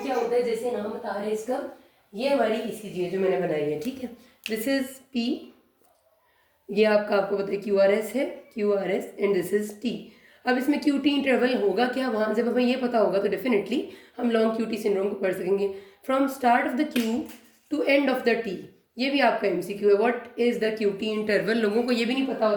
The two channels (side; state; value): both; identical; correlation 1.00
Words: होता है. जैसे नाम बता रहे हैं इसका, ये हमारी ईसीजी है जो मैंने बनाई है. ठीक है, दिस इज पी, ये आपको पता है QRS है, QRS and this is T. अब इसमें QT इंटरवल होगा क्या, वहाँ जब हमें ये पता होगा तो डेफिनेटली हम लॉन्ग QT सिंड्रोम को पढ़ सकेंगे. From start of the Q to end of the T, ये भी आपका MCQ है. What is the QT interval, लोगों को ये भी नहीं पता